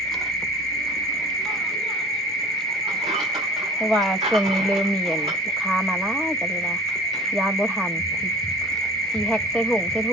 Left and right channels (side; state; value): both; normal; correlation 0.42